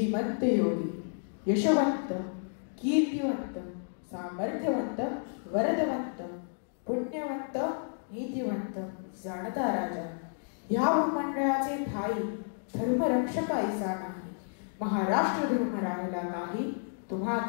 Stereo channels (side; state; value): right; silent; digital silence